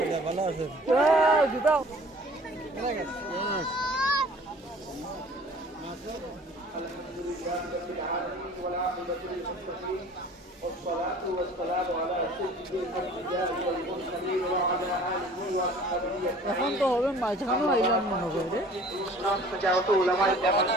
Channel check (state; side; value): normal; both; correlation 0.49